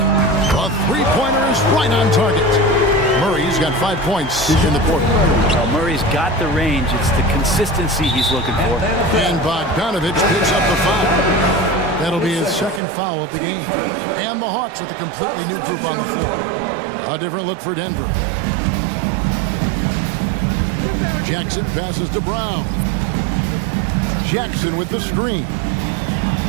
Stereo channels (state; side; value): drops out; left; at 12.8 s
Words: three-pointer is right on target. Murray's got 5 points in the quarter. Well, Murray's got the range. It's the consistency he's looking for. And Bogdanovich picks up the foul. That'll be his second foul of the game. And the Hawks with a completely new group on the floor. A different look for Denver. Jackson passes to Brown. Jackson with the screen.